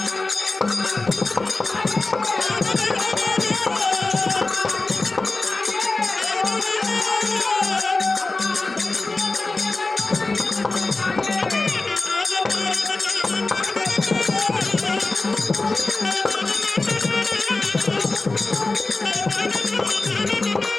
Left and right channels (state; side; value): quieter; right; 3.4 dB